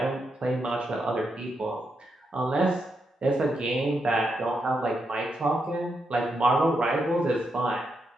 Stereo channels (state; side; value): normal; both; correlation 0.83